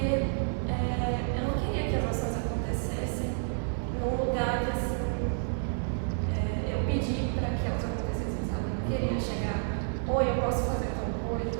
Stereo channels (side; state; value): left; silent; 58 dB below the other